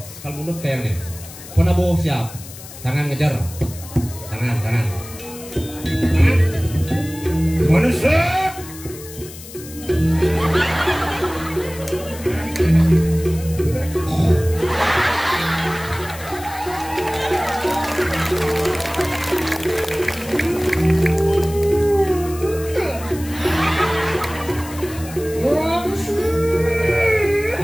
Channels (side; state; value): left; noise; hiss, 15 dB below the sound